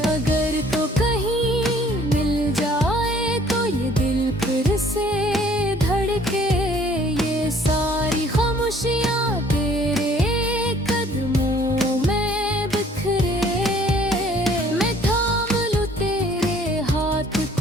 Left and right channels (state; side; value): normal; both; correlation 0.57